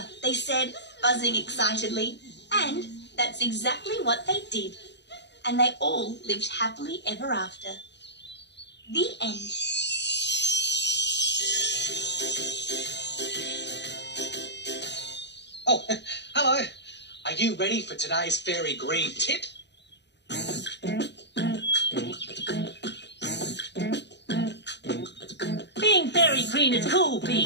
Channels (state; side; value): late; right; 0.50 ms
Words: they said, buzzing excitedly. And that's exactly what they did. And they all lived happily ever after. The end. Oh, hello. Are you ready for today's fairy green tip? Being fairy green is cool,